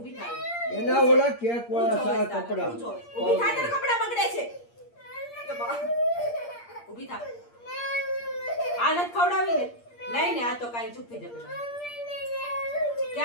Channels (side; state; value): right; late; 8.6 ms